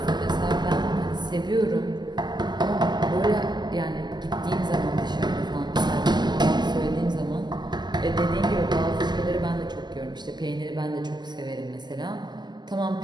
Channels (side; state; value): left; late; 0.21 ms